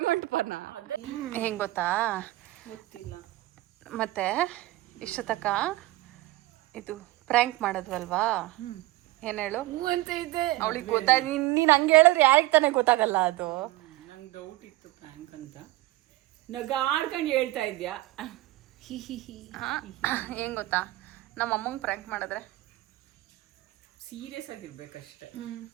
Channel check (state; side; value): quieter; left; 18.2 dB